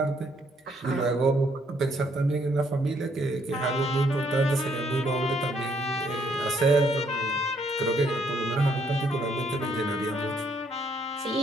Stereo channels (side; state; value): both; normal; correlation 0.69